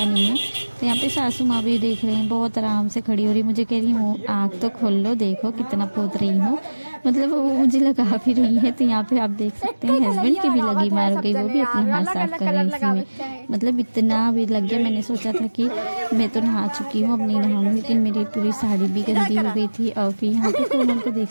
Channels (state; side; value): inverted; both; correlation -1.00